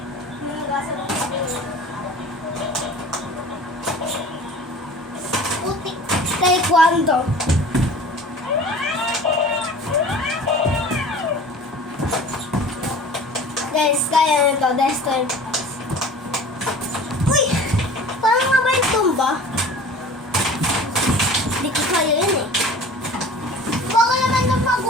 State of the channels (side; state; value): both; normal; correlation 0.42